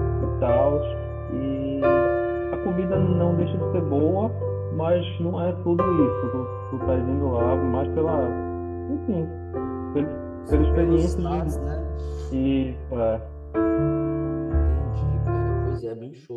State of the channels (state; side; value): identical; both; correlation 1.00